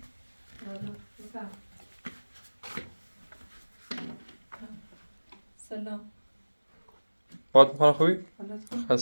حالا بفهم. سلام. باد میکنه خوبی؟ حالت خوب؟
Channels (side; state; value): both; inverted; correlation -1.00